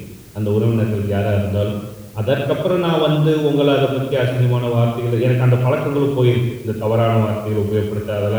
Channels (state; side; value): identical; both; correlation 1.00